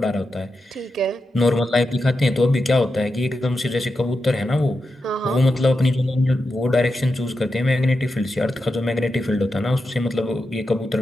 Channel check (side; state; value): both; normal; correlation 0.88